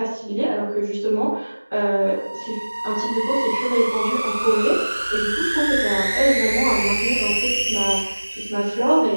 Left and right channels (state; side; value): inverted; both; correlation -1.00